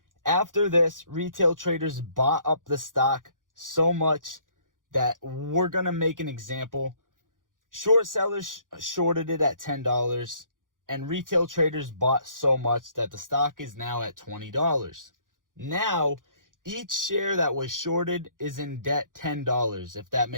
After this, retail traders bought up the stock so much that we're going to make an example. Short sellers shorted it at $10 and retail traders bought so much that the stock is now at $20. Now, each share that was shorted is in debt $10, if that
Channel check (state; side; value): late; left; 0.89 ms